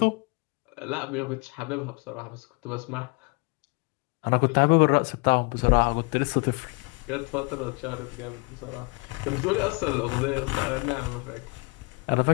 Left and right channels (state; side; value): quieter; right; 28.2 dB